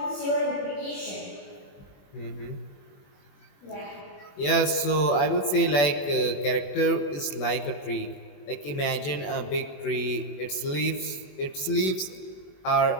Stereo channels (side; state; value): right; late; 21 ms